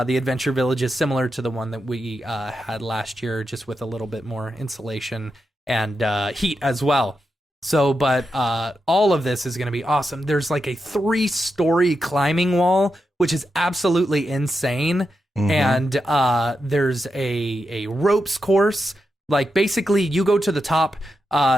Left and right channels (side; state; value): both; normal; correlation 0.87